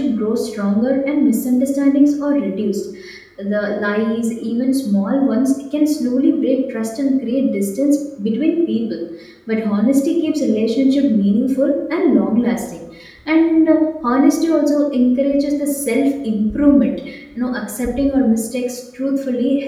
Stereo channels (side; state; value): both; identical; correlation 1.00